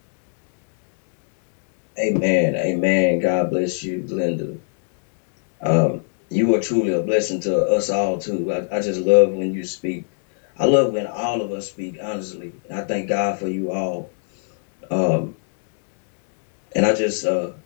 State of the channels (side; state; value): right; silent; 65 dB below the other